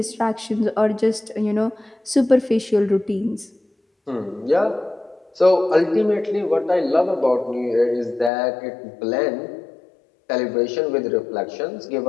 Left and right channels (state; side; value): drops out; right; at 8.3 s